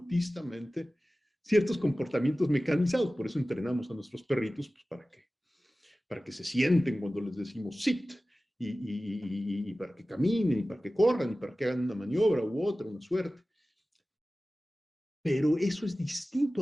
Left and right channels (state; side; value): normal; both; correlation 0.96